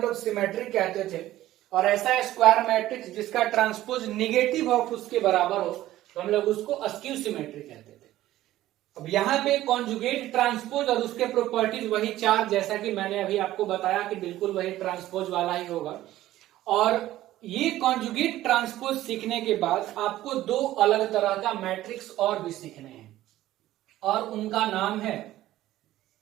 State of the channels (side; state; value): left; quieter; 14.7 dB